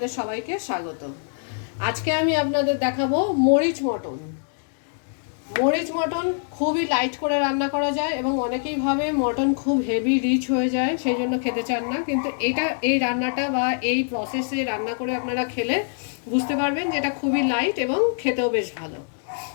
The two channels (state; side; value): silent; right; digital silence